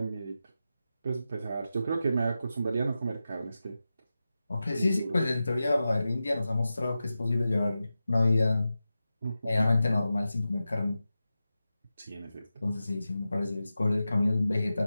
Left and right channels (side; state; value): both; inverted; correlation -0.92